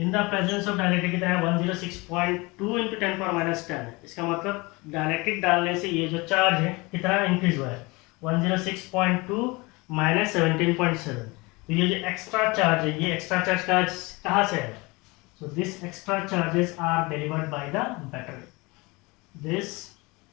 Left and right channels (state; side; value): quieter; right; 24.8 dB